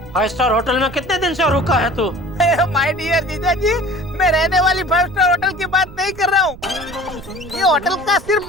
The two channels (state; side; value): noise; right; rumble, 17 dB below the sound